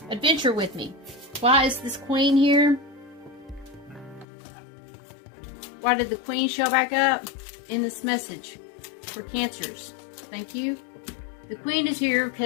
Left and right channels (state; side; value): drops out; right; at 4.2 s